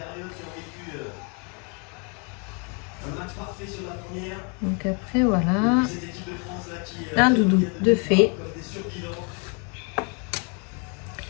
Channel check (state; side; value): quieter; right; 35.7 dB